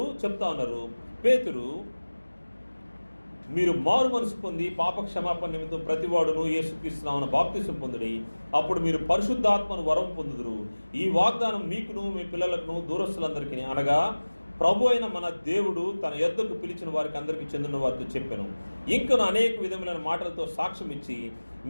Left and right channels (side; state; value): both; inverted; correlation -1.00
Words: చెప్తా ఉన్నారు, పేతురు, మీరు మారు మనసు పొంది పాప క్షమాపణ నిమిత్తం ప్రతివాడును యేసుక్రీస్తు నామమున బాప్తిసం పొందుడి, అప్పుడు మీరు పరిశుద్ధాత్మను వరం పొందుదురు. ఈ వాగ్దానం మీకును మీ పిల్లలకును దూరస్తులందరికీ, అనగా ప్రభు అయిన మన దేవుడు తన యొద్దకు పిలిచిన వారికి అందరికీ చెందిన వారితో చెప్పాను. ఇంకను అనేక విధములైన మాటలతో సాక్ష్యం ఇచ్చి,